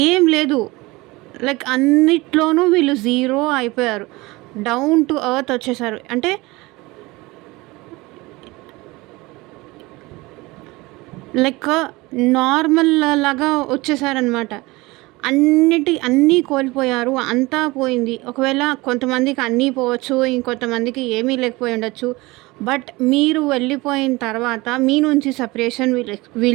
ఏం లేదు. లైక్ అన్నిట్లోనూ వీళ్ళు జీరో అయిపోయారు. డౌన్ టు ఎర్త్ వచ్చేసారు. అంటే లైక్ నార్మల్ లాగా వచ్చేసారనమాట. అన్నీ కోల్పోయారు. అంతా పోయింది. ఒకవేళ కొంతమందికి అన్నీ పోవచ్చు. ఇంకొంతమందికి ఏమీ లేకపోయి ఉండొచ్చు. బట్ మీరు వెళ్ళిపోయిన తర్వాత, మీ నుంచి సెపరేషన్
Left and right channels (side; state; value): left; quieter; 22.0 dB